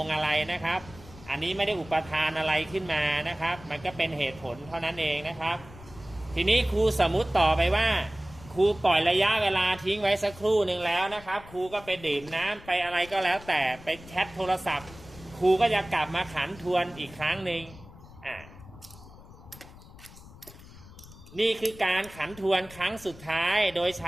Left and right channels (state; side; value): noise; left; rumble, 19 dB below the sound